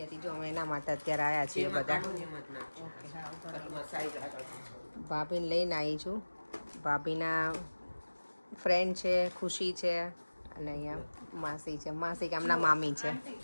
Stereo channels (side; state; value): both; inverted; correlation -1.00